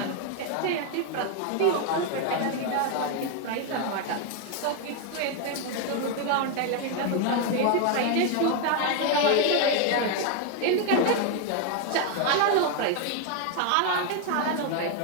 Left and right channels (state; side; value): different; both; correlation 0.01